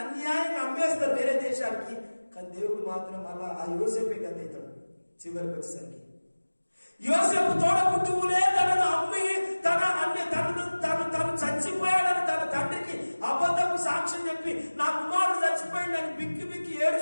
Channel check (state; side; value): inverted; both; correlation -1.00